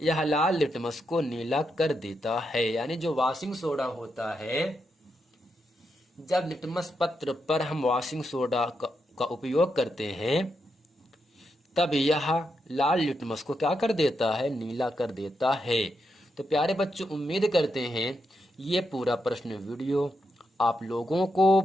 यह लाल लिटमस को नीला कर देता है। यानी जो वॉशिंग सोडा होता है जब लिटमस पत्र पर हम वॉशिंग सोडा का उपयोग करते हैं तब यह लाल लिटमस को क्या कर देता है, नीला कर देता है। तो प्यारे बच्चों, उम्मीद करते हैं ये पूरा प्रश्न वीडियो आप लोगों को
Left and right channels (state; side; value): normal; both; correlation 0.83